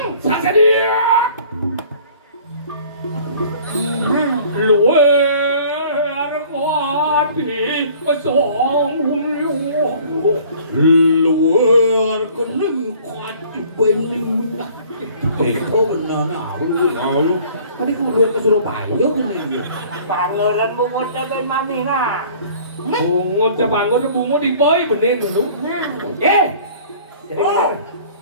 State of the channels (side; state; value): both; inverted; correlation -0.51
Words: Saja dia. Luar kuati song luar kening kuati bening. Oh benar nah. Tadi kemudian ke Surabaya kan Pangeran bungut cho bên mami nah. Bungut sa bangun na bungut di boy benin dulu. Jadi